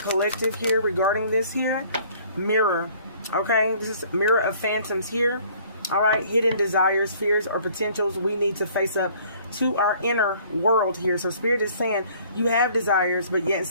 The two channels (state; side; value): inverted; both; correlation -0.56